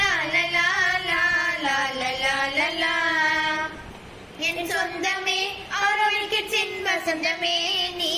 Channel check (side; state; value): both; identical; correlation 1.00